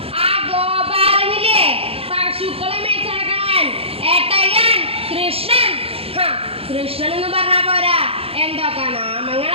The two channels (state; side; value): late; left; 0.28 ms